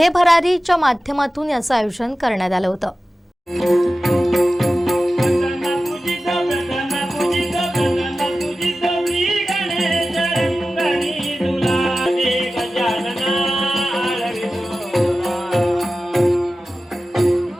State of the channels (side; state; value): both; normal; correlation 0.95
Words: भरारीच्या माध्यमातून याचं आयोजन करण्यात आलं होतं.